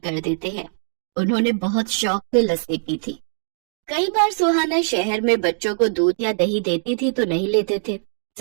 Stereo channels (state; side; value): silent; left; digital silence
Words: देते हैं। उन्होंने बहुत शौक से लस्सी पी थी। कई बार सुहाना शहर में बच्चों को दूध या दही देती थी तो नहीं लेते थे,